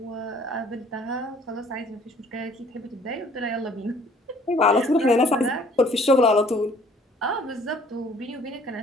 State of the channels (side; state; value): both; normal; correlation 0.56